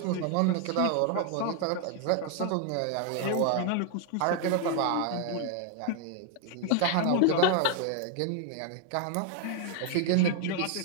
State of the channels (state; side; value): different; both; correlation 0.00